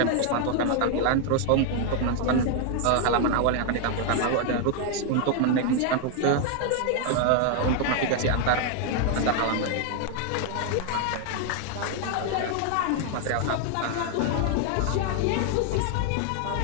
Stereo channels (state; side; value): different; both; correlation 0.00